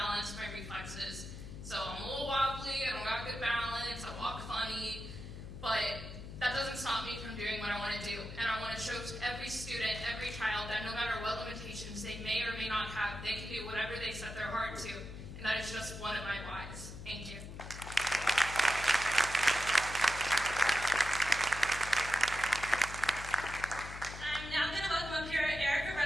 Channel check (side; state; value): left; noise; hum, 11 dB below the sound